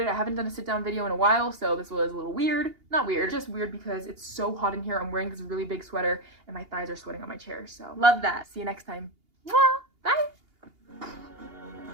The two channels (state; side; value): late; left; 2.8 ms